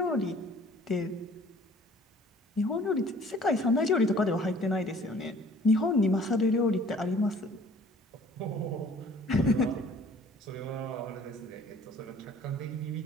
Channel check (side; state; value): both; normal; correlation 0.53